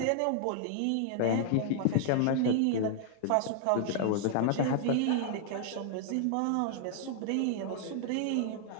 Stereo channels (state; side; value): different; both; correlation -0.01